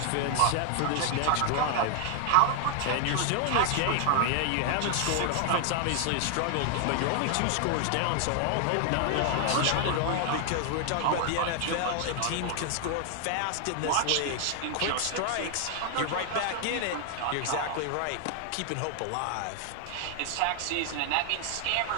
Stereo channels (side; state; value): both; different; correlation 0.00